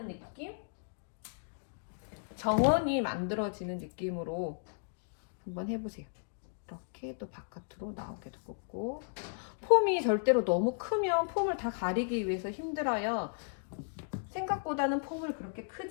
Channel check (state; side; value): silent; right; digital silence